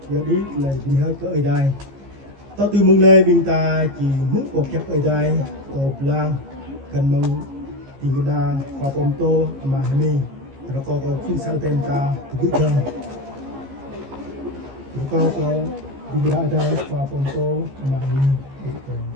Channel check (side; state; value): left; late; 15 ms